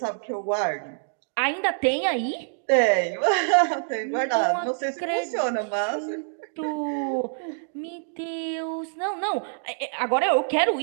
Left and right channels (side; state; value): left; silent; digital silence